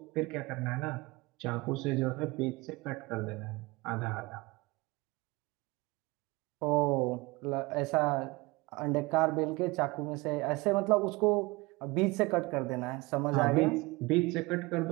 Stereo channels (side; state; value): left; quieter; 23.4 dB